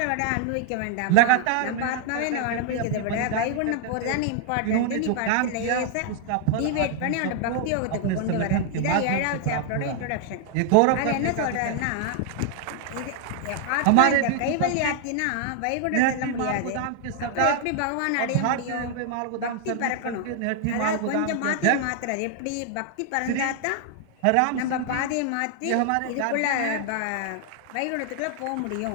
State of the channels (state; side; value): different; both; correlation 0.00